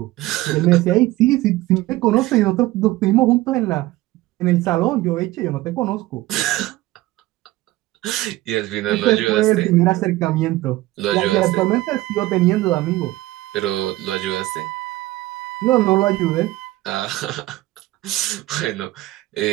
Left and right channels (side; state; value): left; quieter; 17.6 dB